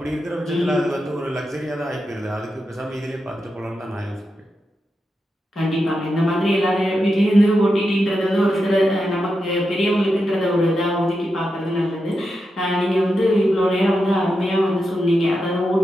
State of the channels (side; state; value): both; normal; correlation 0.88